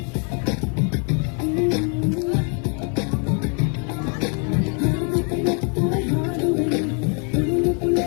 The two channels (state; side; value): quieter; right; 39.4 dB